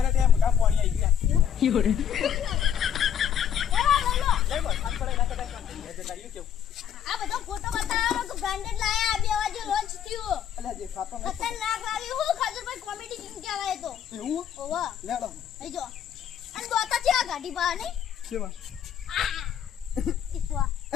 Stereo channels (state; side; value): quieter; right; 9.1 dB